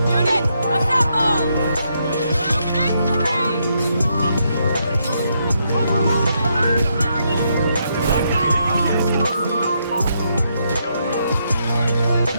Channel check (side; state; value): both; inverted; correlation -0.77